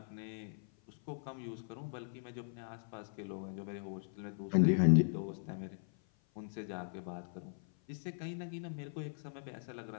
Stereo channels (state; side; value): silent; right; 52 dB below the other